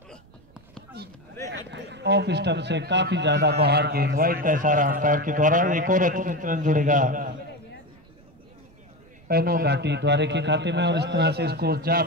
ऑफ स्टंप से काफी ज्यादा बाहर गेंद, वाइड का इशारा अंपायर के द्वारा। एक और रन जुड़ेगा पैनो घाटी द्वारे के खाते में, और इस तरह से स्कोर जा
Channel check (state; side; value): noise; right; rumble, 27 dB below the sound